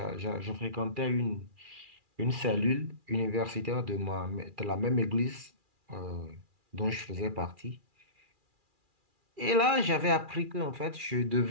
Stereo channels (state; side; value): late; left; 2.4 ms